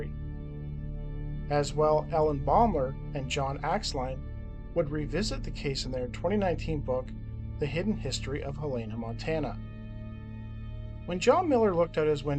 As well, Ellen Baumler and John Axline would revisit the case in their 2019 book, The Hidden History of Helena, Montana. When John Miller looked out his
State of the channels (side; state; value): both; identical; correlation 1.00